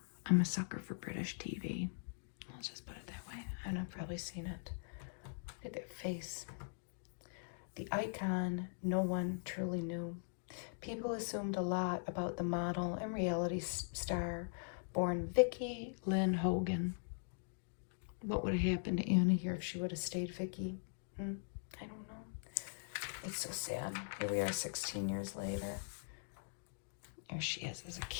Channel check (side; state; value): right; silent; digital silence